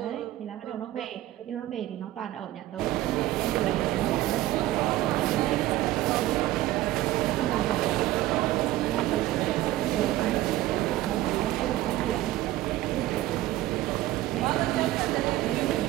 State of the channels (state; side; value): quieter; left; 15.5 dB